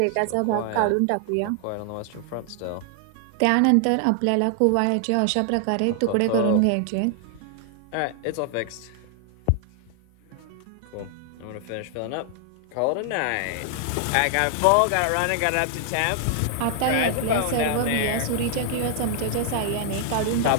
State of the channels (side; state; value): both; different; correlation 0.00